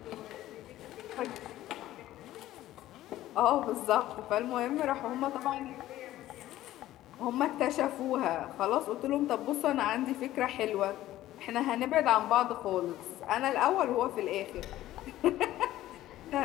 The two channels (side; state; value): right; quieter; 14.5 dB